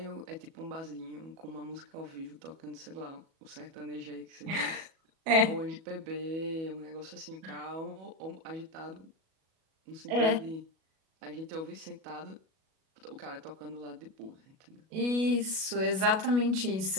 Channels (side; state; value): left; late; 37 ms